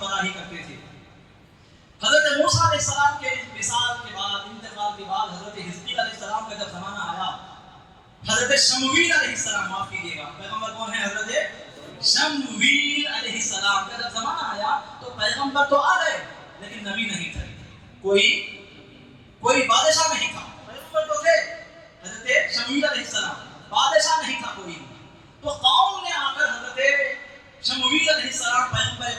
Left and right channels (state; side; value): identical; both; correlation 1.00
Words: کرتے تھے. حضرت موسیٰ علیہ السلام کے وصال کے بعد، انتقال کے بعد، حضرت حزقیل علیہ السلام کا جب زمانہ آیا، حضرت شمویل علیہ السلام، معاف کیجیے گا، پیغمبر کون ہے؟ حضرت شمویل علیہ السلام کا جب زمانہ آیا تو پیغمبر تو آ گئے لیکن نبی نہیں تھے. کوئی بادشاہ نہیں تھا. پیغمبر تو تھے حضرت شمویل علیہ السلام، بادشاہ نہیں تھا کوئی. تو قوم نے آ کر حضرت شمویل علیہ السلام پیغمبر